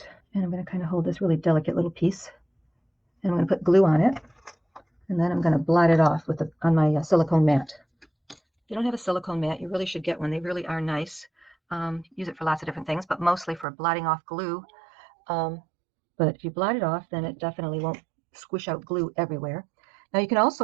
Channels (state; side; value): drops out; left; at 13.7 s